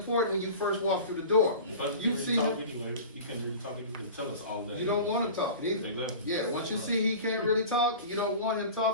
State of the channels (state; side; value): inverted; both; correlation -0.36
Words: when you first walk through the door. You see him, anyway. He can't really talk. He can tell us all that. you don't want him talking either. Exactly. Yeah, once you see he can't really talk, you don't want him